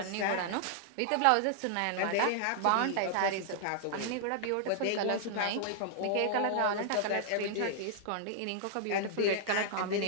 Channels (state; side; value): different; both; correlation -0.01